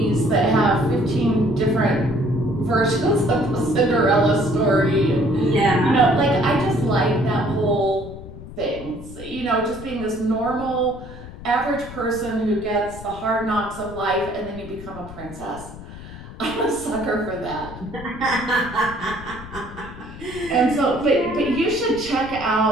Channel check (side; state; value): left; noise; rumble, 14 dB below the sound